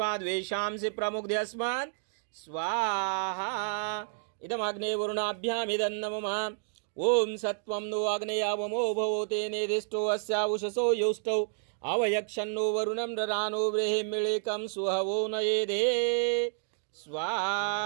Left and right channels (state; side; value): silent; left; digital silence